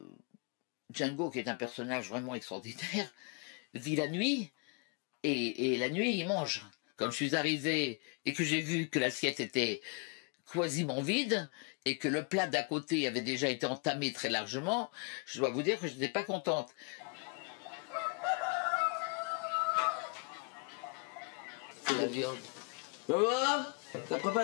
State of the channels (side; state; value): right; quieter; 33.2 dB